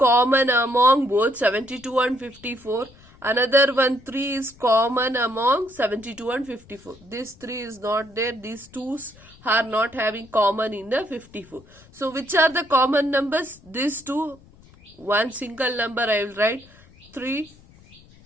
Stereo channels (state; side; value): noise; left; rumble, 25 dB below the sound